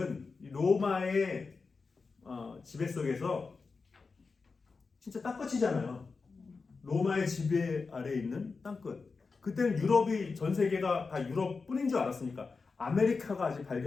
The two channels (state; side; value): quieter; right; 4.5 dB